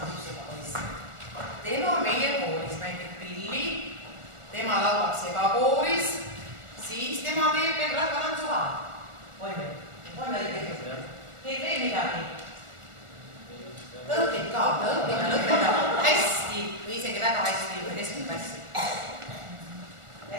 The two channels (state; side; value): late; left; 1.4 ms